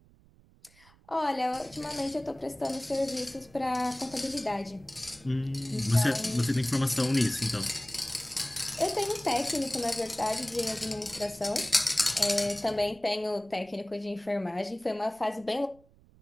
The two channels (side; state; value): right; noise; rumble, 28 dB below the sound